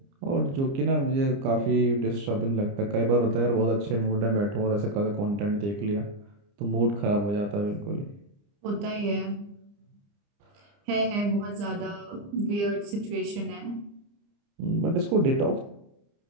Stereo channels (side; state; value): left; late; 29 ms